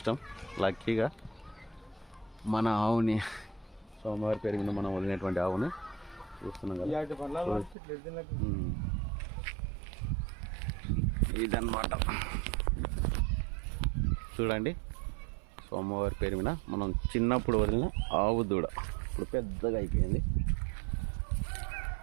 లక్కీగా మన ఆవుని స్వామివారి పేరు మీద మనం వదిలినటువంటి ఆవుని చూస్తున్నాం కదా. ఇదన్నమాట చూడండి, స్వామివారి పేరు మీద మనం చిన్నప్పుడు వదిలిన ఆవు దూడ ఇప్పుడు పెద్దగా అయిపోయింది.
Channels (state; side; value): drops out; left; at 7.8 s